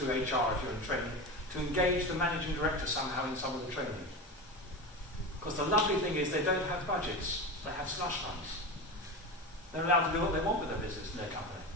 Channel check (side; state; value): both; normal; correlation 0.24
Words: HR if you're in training, to engage the managing director somehow in some of the training. Because the lovely thing is they don't have budgets. They have slush funds. They're allowed to do what they want with their business and their company.